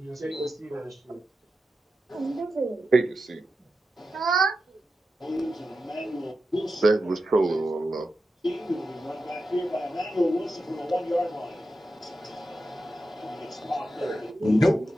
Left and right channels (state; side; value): normal; both; correlation 0.90